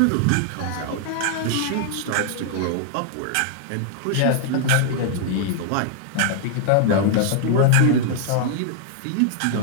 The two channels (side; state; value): both; different; correlation 0.00